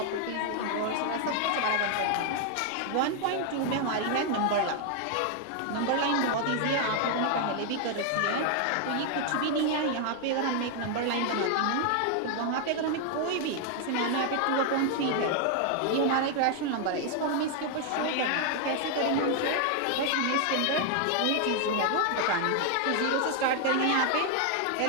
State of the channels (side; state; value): both; different; correlation 0.00